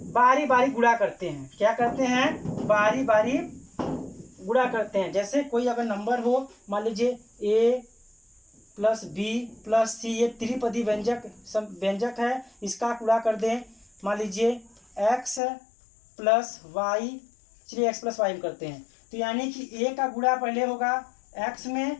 बारी गुणा करते हैं। क्या करते हैं बारी बारी गुणा करते हैं। जैसे कोई अगर नंबर हो, मान लीजिए a + b + c, ये त्रिपदी व्यंजक है, इसका गुणा कर दें। मान लीजिए x + y, चलिए x + y में करते हैं। तो यानी कि a का गुणा पहले होगा x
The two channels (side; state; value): right; drops out; at 15.4 s